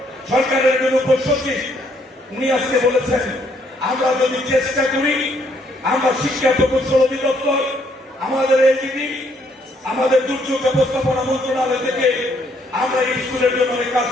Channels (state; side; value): normal; both; correlation 0.69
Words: সরকারের একজন উপসচিব, উনি আজকে বলেছেন, আমরা যদি চেষ্টা করি, আমরা শিক্ষা প্রকৌশল অধিদপ্তর, আমাদের এলজিডি, আমাদের দুর্যোগ ব্যবস্থাপনা মন্ত্রণালয় থেকে আমরা এই স্কুলের জন্য অনেক কাজ